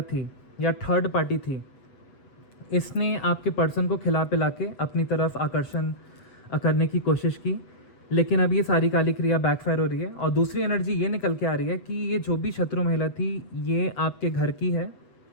थी या थर्ड पार्टी थी, इसने आपके पर्सन को खिला पिला के अपनी तरफ आकर्षण करने की कोशिश की, लेकिन अब ये सारी काली क्रिया बैकफायर हो रही है। और दूसरी एनर्जी ये निकल के आ रही है कि ये जो भी शत्रु महिला थी ये आपके घर की है।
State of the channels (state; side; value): late; right; 7.8 ms